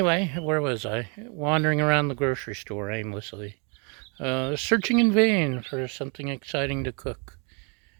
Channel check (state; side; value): quieter; left; 35.9 dB